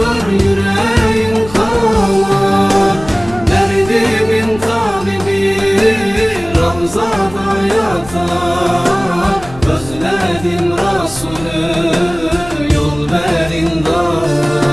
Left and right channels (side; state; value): left; noise; rumble, 16 dB below the sound